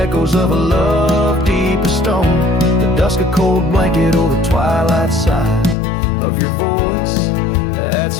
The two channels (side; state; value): right; drops out; at 5.8 s